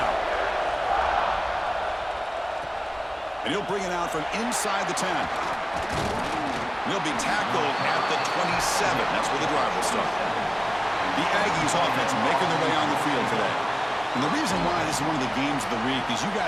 And he'll bring it out from inside the 10. He'll be tackled at the 27. That's where the drive will start. The Aggies offense making their way on the field today. And the reason why this is one of the games of the week is you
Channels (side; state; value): both; identical; correlation 1.00